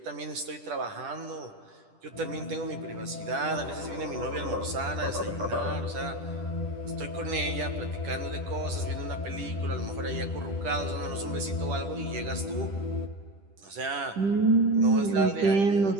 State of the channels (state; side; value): late; left; 10 ms